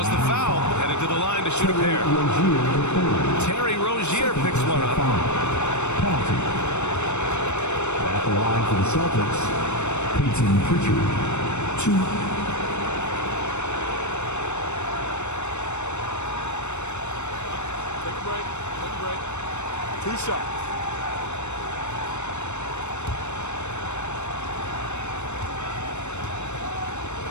the foul. Headed to the line to shoot a pair. Terry Rozier picks one up. Penalty. At the line for the Celtics, Peyton Pritchard. 2. Break. 2 shots.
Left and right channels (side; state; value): right; late; 0.82 ms